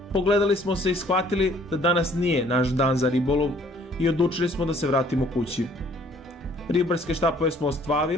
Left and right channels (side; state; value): both; normal; correlation 0.59